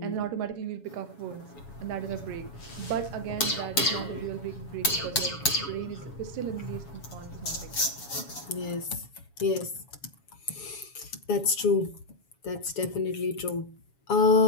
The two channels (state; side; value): late; right; 7.2 ms